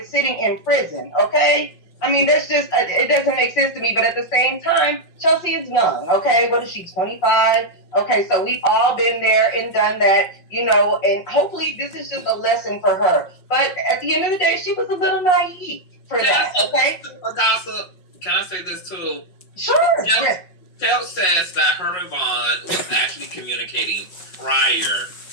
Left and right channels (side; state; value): right; late; 5.4 ms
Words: sitting in prison, okay? I mean, that's just, it doesn't make sense to me. But at the same time, Chelsea is young, okay? What is she, 25? Okay, so we've all been there and done that, you know, and hopefully this is just a lesson for her. But at the end of the day, she was a little naive for that, okay? A gossip. Can I say this too? Sure. Yeah. Phelps says that her and Vaughn was actually communicating prior